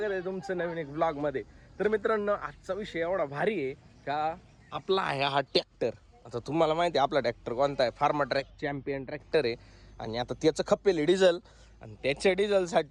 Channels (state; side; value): identical; both; correlation 1.00